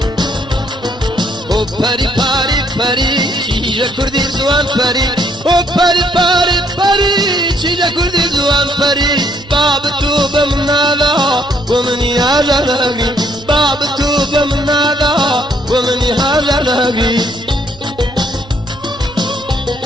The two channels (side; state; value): both; normal; correlation 0.68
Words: او پری پاری پری چیجا کردی زوان پری او پری پاری پری چیجا کردی زوان پری باب تو بمنالا ومني هاجر لهقري باب تو بمنالا ومني هاجر لهقري